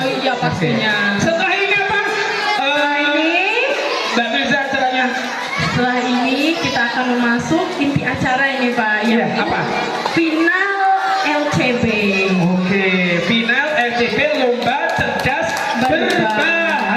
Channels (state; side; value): identical; both; correlation 1.00